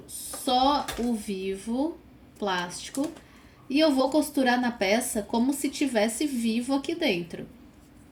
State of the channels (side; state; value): both; identical; correlation 1.00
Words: só o vivo plástico. E eu vou costurar na peça como se tivesse vivo aqui dentro.